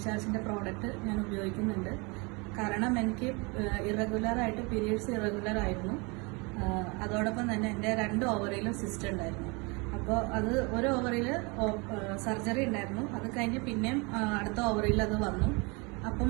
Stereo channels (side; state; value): left; quieter; 29.2 dB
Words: പ്രോഡക്റ്റ് ഞാൻ ഉപയോഗിക്കുന്നുണ്ട്. കാരണം എനിക്ക് ഇറഗുലറായിട്ട് പീരിയഡ്സ് ഇറഗുലർ ആയിരുന്നു. അതോടൊപ്പം തന്നെ എൻ്റെ 2 ഓവറിയിലും സിസ്റ്റ് ഉണ്ടായിരുന്നു. അപ്പോൾ അത് ഒരു ഓവറിൽ സർജറി ഉണ്ടായിരുന്നു. അത് കഴിഞ്ഞ് പിന്നെയും അടുത്ത ഓവറിൽ അത് വന്നു. അപ്പം